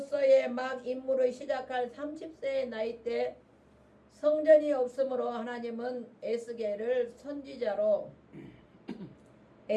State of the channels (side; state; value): both; identical; correlation 1.00